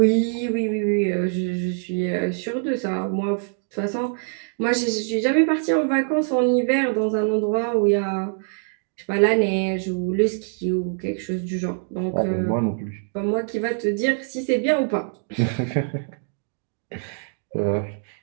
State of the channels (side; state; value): left; silent; 62 dB below the other